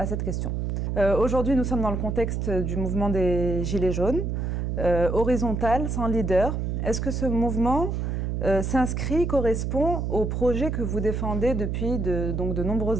cette question. Aujourd'hui, nous sommes dans le contexte du mouvement des Gilets jaunes, horizontal, sans leader. Est-ce que ce mouvement s'inscrit, correspond au projet que vous défendez depuis de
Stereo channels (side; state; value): right; noise; hum, 1 dB below the sound